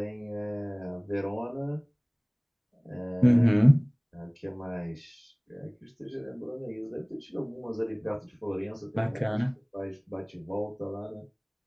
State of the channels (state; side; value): identical; both; correlation 1.00